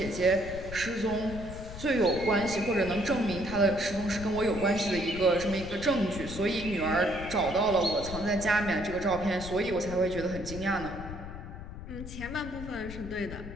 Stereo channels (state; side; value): noise; left; rumble, 10 dB below the sound